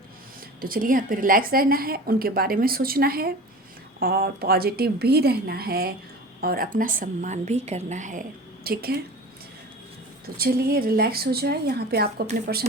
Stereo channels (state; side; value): normal; both; correlation 0.37